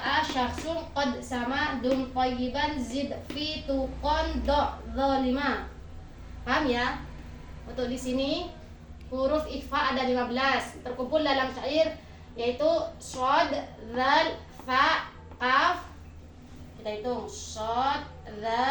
syakhsun qad sama dum qayyiban zid fi tuqan do zalima. Paham ya? Untuk di sini huruf ikhfa ada 15 terkumpul dalam syair, yaitu shad, dzal, fa, qaf. Kita hitung shad,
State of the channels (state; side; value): identical; both; correlation 1.00